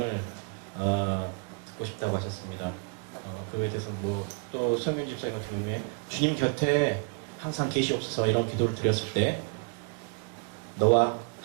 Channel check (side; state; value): left; quieter; 35.5 dB